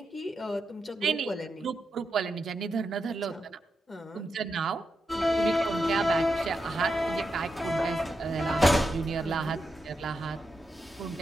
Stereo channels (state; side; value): normal; both; correlation 0.86